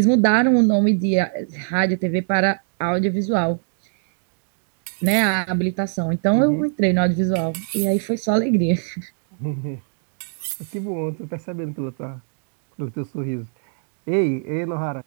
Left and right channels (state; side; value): silent; left; digital silence